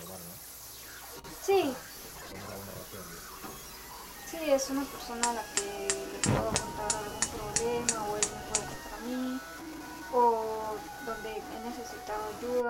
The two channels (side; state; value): both; identical; correlation 1.00